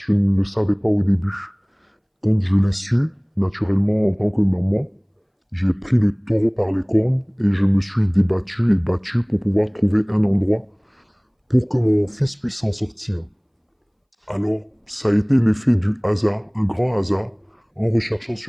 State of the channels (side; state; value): both; identical; correlation 1.00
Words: ne le savais pas au début. Quand je l'ai su, naturellement, en tant que maman, j'ai pris le taureau par les cornes et je me suis débattu et battu pour pouvoir trouver un endroit pour que mon fils puisse s'en sortir. Alors, ça a été l'effet du hasard, un grand hasard. En recherchant